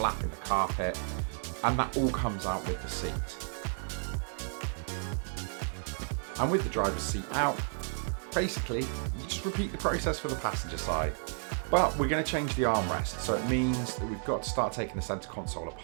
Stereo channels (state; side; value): silent; left; 56 dB below the other